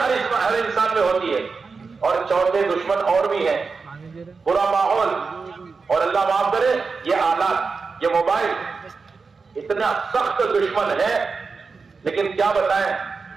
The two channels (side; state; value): left; quieter; 4.7 dB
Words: انسان میں ہوتی ہے، اور چوتھے دشمن اور بھی ہیں، برا ماحول، اور اللہ معاف کرے یہ آلات، یہ موبائل، اتنا سخت دشمن ہے۔ لیکن کیا بتائیں،